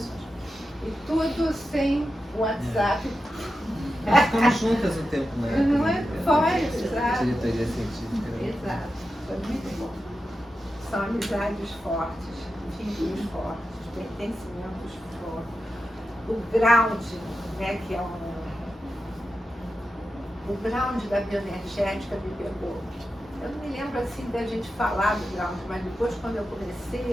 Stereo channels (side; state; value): both; normal; correlation 0.90